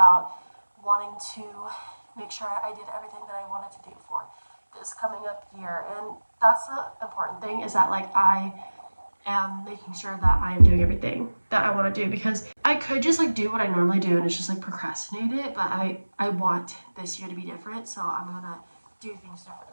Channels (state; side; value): inverted; both; correlation -1.00